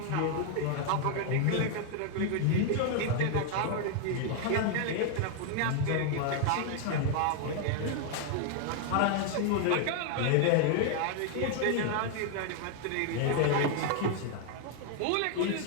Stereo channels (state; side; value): different; both; correlation 0.00